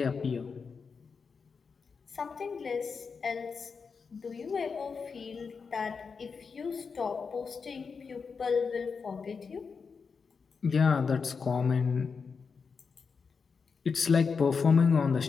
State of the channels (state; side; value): quieter; right; 5.4 dB